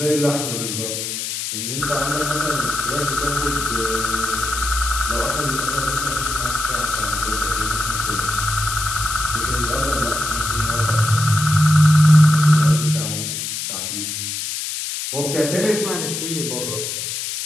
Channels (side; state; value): left; noise; hiss, 4 dB below the sound